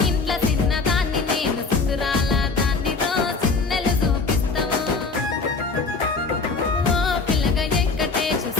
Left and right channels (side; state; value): right; quieter; 4.2 dB